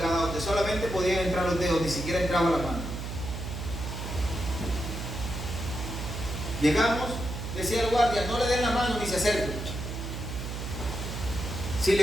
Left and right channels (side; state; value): right; noise; hum, 6 dB below the sound